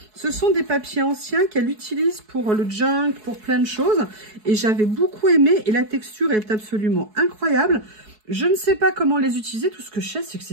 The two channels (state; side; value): late; left; 4.7 ms